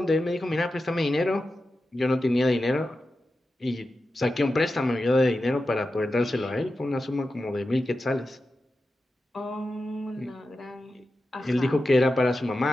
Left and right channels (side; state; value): both; normal; correlation 0.91